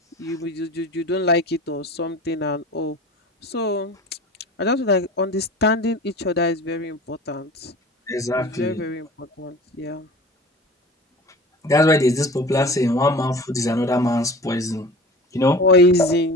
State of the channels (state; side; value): normal; both; correlation 0.39